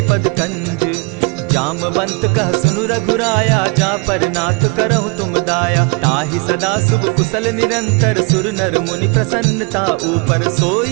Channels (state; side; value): quieter; left; 31.0 dB